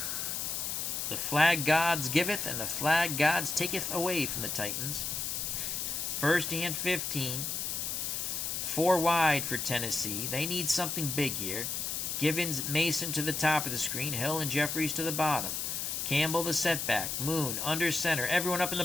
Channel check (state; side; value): noise; left; hiss, 2 dB below the sound